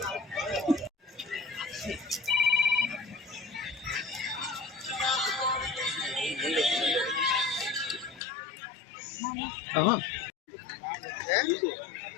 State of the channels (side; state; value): right; drops out; at 8.2 s